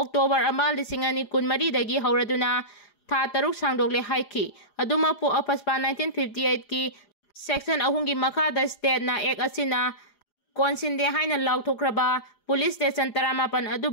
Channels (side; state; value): right; late; 4.9 ms